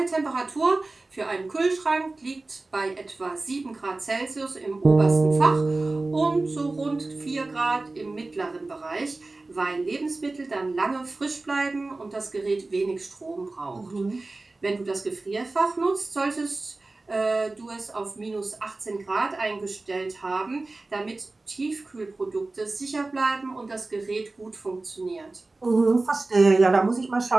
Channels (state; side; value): quieter; left; 3.2 dB